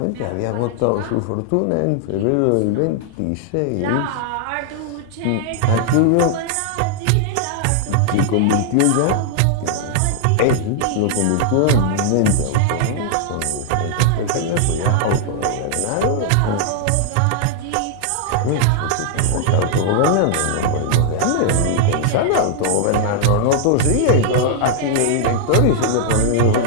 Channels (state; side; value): different; both; correlation -0.01